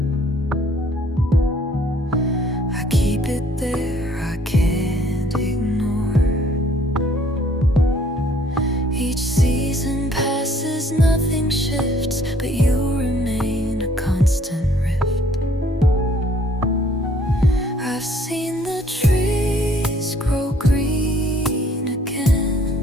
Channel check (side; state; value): both; normal; correlation 0.61